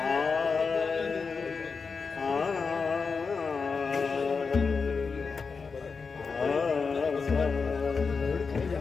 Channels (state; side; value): quieter; right; 5.0 dB